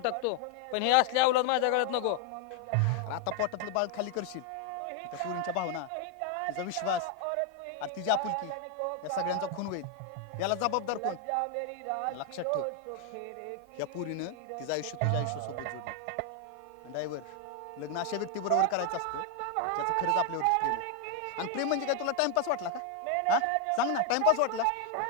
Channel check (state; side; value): different; both; correlation 0.01